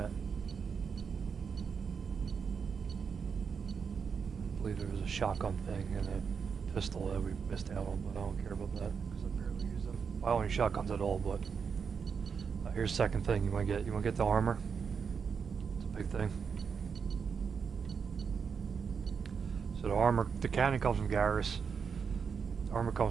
I believe there was a shotgun thing and a pistol that we missed out on, but I don't care about that because I barely use them. I don't use shotguns at all, but here's the second thing you want to get. You want to get the armor. It's a big thing. So the armor, the cannon comes from Garrus. The armor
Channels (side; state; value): left; quieter; 6.2 dB